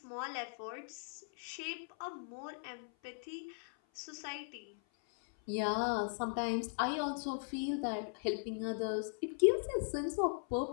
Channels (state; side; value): silent; right; 52 dB below the other